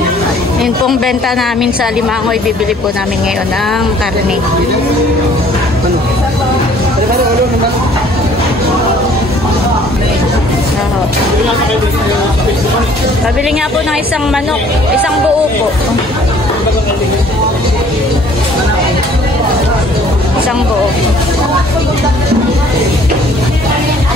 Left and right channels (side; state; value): both; normal; correlation 0.56